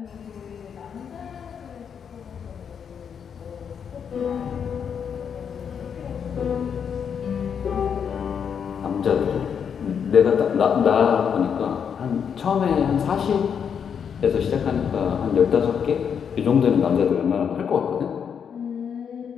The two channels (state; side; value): quieter; right; 7.4 dB